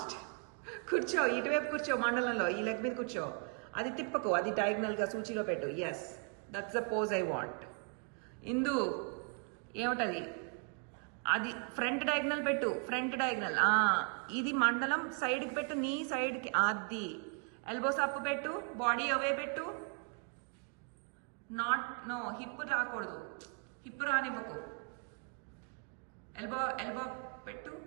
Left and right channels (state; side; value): quieter; left; 38.0 dB